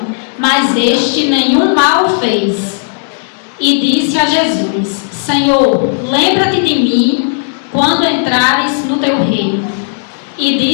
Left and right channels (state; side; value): silent; right; 72 dB below the other